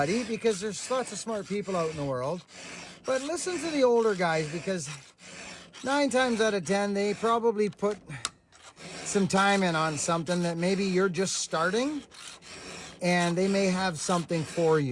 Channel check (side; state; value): both; identical; correlation 1.00